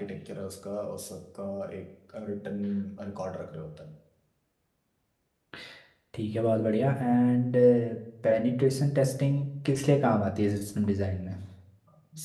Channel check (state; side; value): identical; both; correlation 1.00